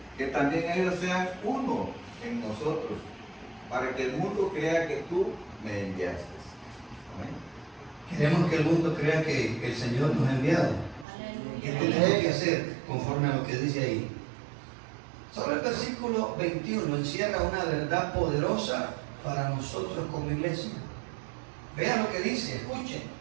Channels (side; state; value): left; drops out; at 11.1 s